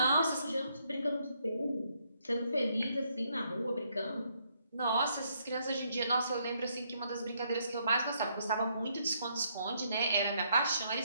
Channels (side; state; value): both; inverted; correlation -0.73